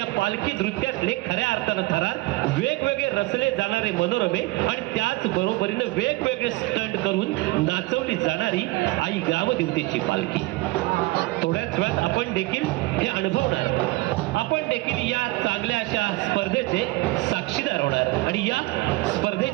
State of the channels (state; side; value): quieter; left; 21.1 dB